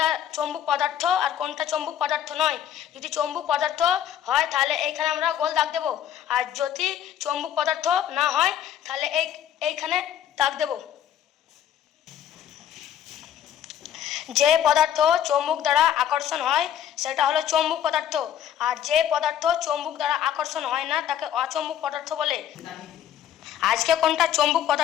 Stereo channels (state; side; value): quieter; right; 10.3 dB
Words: চৌম্বক পদার্থ আর কোনটা চৌম্বক পদার্থ নয়। যদি চৌম্বক পদার্থ হয় তাহলে এইখানে আমরা গোল দাগ দেব, আর যদি চৌম্বক পদার্থ না হয় তাহলে এইখানে দাগ দেব। যে পদার্থ চৌম্বক দ্বারা আকর্ষণ হয় সেটা হলো চৌম্বক পদার্থ, আর যে পদার্থ চৌম্বক দ্বারা আকর্ষণ হয় না তাকে অচৌম্বক পদার্থ বলে। আজকে কোনটা চৌম্বক